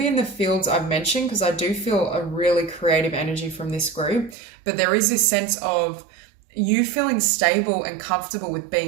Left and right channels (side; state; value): left; drops out; at 4.4 s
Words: in the fields I've mentioned, because I do feel a really creative energy from this group, but there is this sense of you feeling stable and comfortable with